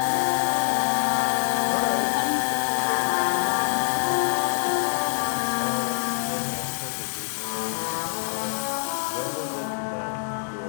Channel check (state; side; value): silent; right; 62 dB below the other